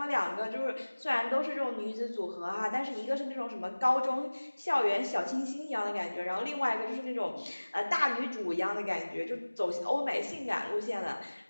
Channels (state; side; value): inverted; both; correlation -1.00